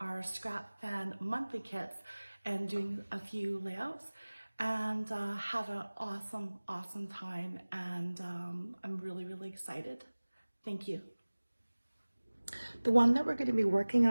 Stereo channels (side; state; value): both; inverted; correlation -1.00